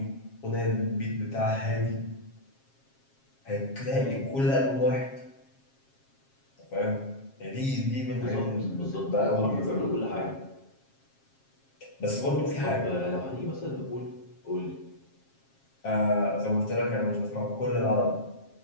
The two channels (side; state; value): right; late; 7.4 ms